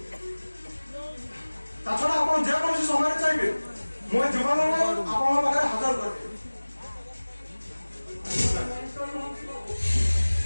ତା ଛଡ଼ା ଆପଣ ଯେକୌଣସି ସମୟରେ ଚାହିଁବେ ମୁଁ ଏ ଯୁବକଙ୍କୁ ଆପଣଙ୍କ ପାଖରେ ହାଜର କରିବି।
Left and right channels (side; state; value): both; inverted; correlation -1.00